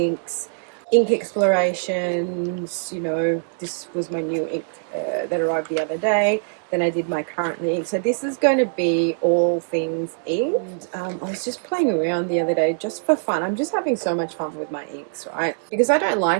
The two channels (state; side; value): silent; left; digital silence